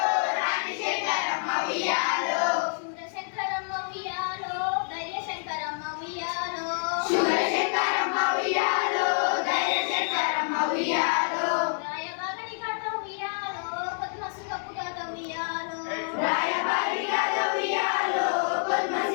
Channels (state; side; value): silent; right; 60 dB below the other